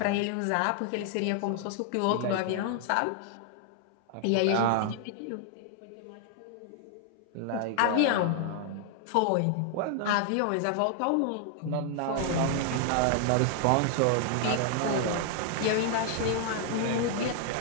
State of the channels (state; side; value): different; both; correlation 0.00